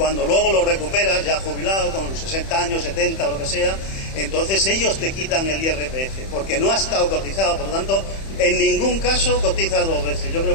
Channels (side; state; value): right; late; 31 ms